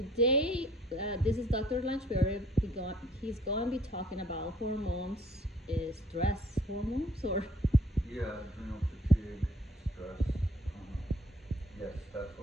this is Dr. Lanchberry. He's going to be talking about hormones, stress hormones, or Yeah, adrenal fatigue, stress. Yes, that's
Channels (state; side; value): normal; both; correlation 0.59